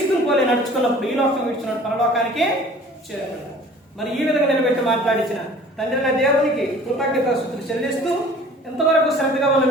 పోలే నడుచుకున్నప్పుడు ఈ లోకం విడిచిన పరలోకానికి చేరుకుంటాం. మరి ఈ విధంగా నిలబెట్టి మాట్లాడించిన తండ్రి దేవునికి కృతజ్ఞతాస్తుతులు చెల్లిస్తూ, ఎంతవరకు శ్రద్ధగా ఉన్న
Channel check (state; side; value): normal; both; correlation 0.48